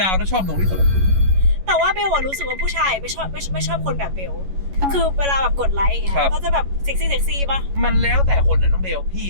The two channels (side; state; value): left; late; 11 ms